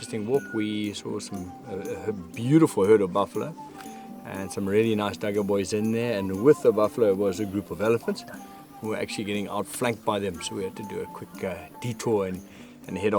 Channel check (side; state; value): both; identical; correlation 1.00